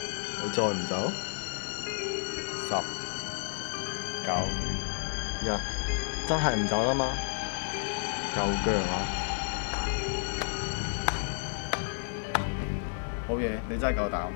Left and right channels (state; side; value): silent; right; digital silence